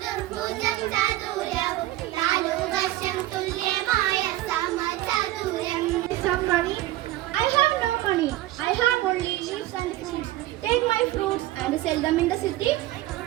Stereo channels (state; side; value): quieter; left; 16.1 dB